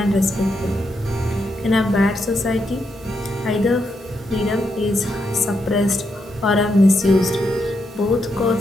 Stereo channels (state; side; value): normal; both; correlation 0.81